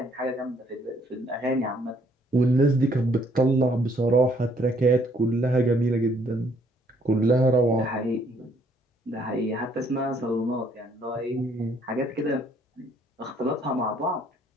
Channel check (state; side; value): normal; both; correlation 0.66